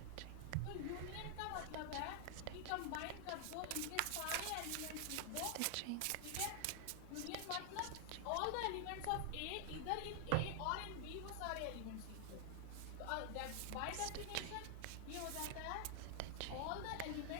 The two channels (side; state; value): both; different; correlation 0.00